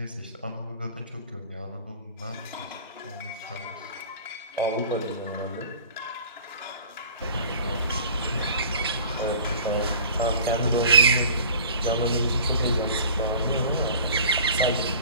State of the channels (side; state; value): both; inverted; correlation -0.46